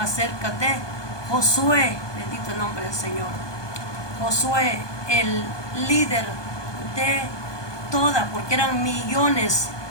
de Josué. Bendito el nombre del Señor. Josué, el líder de toda, porque eran millones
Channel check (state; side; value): late; right; 1.2 ms